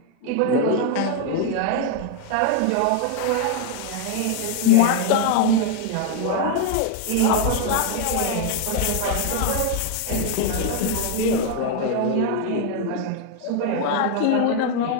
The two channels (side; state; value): both; different; correlation 0.01